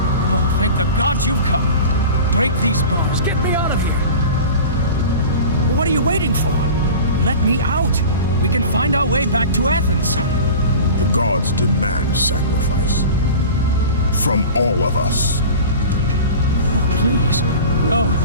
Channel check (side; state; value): both; inverted; correlation -0.36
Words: Oh, thank the gods you've come. Break these bars. Get me out of here. What are you waiting for? Let me out. We can find our way back to Athens. The gods demand sacrifice. From all of us. Oh, please. No.